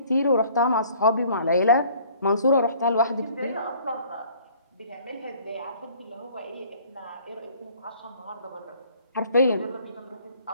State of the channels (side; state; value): both; inverted; correlation -0.55